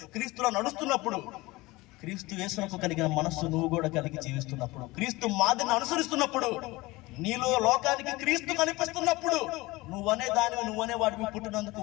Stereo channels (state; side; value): quieter; right; 21.2 dB